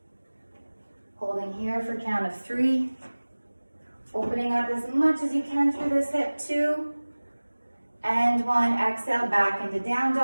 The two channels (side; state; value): both; inverted; correlation -1.00